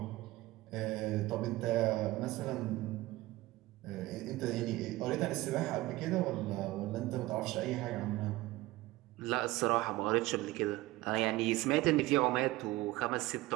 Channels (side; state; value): left; quieter; 18.7 dB